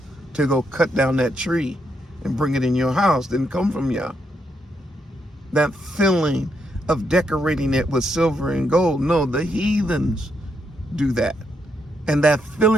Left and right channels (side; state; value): both; normal; correlation 0.78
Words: to go cut down that tree and bring it in your house didn't come from Yah. That feeling of decorating it with silver and gold, no, the heathens do that. And that